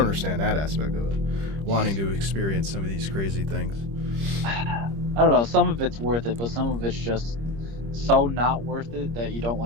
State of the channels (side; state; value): left; late; 26 ms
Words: that aspect of it, wanting to experience some of these crazy things. I don't know, some of it's worth it, but some of it's just so not worth it that you don't